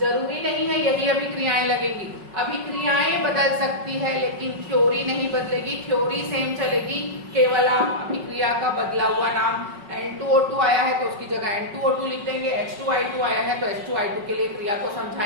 नहीं है यही अभिक्रियाएं लगेगी। अभिक्रियाएं बदल सकती है लेकिन थ्योरी नहीं बदलेगी, थ्योरी सेम चलेगी। केवल आप अभिक्रिया का बदला हुआ नाम N2O2 आया है तो उसकी जगह N2O2 लिख देंगे, H2I2 आया है तो H2I2 के लिए क्रिया को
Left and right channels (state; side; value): late; left; 5.4 ms